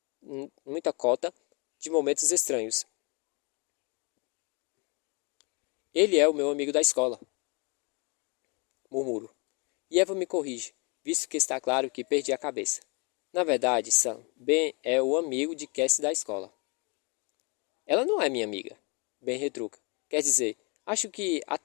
de momentos estranhos. Ele é o meu amigo da escola. Murmuro. E Evan me corrige, visto que está claro que perdi a cabeça. Na verdade, Sam, Ben é o amigo de Cassie da escola. Ela não é minha amiga. Ben retruca. Quer dizer, acho que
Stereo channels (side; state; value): right; quieter; 31.8 dB